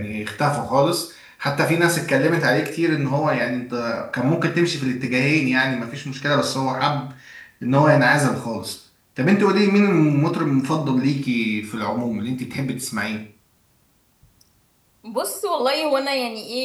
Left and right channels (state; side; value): identical; both; correlation 1.00